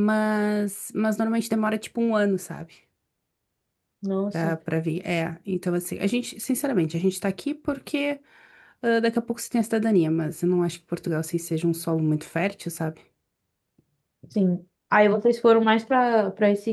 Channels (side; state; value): both; identical; correlation 1.00